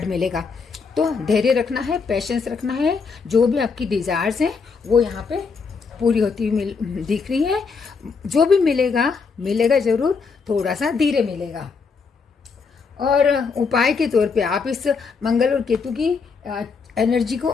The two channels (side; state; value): right; quieter; 5.1 dB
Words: मिलेगा। तो धैर्य रखना है, पेशेंस रखना है, जो भी आपकी डिजायर्स हैं वो यहाँ पे पूरी होती हुई दिख रही है। जो भी मिलेगा जरूर, थोड़ा सा धीरे मिलेगा। और उपाय के तौर पे आप इस मंगल और केतु की एनर्जी को